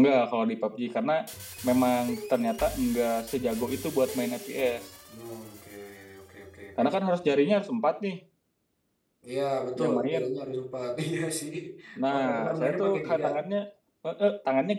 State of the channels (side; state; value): both; identical; correlation 1.00